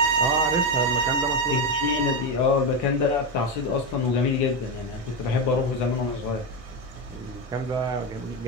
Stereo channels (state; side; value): normal; both; correlation 0.11